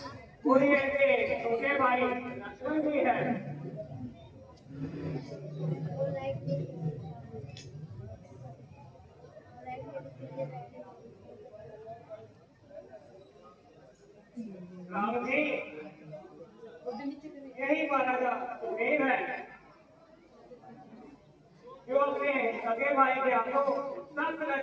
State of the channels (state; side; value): identical; both; correlation 1.00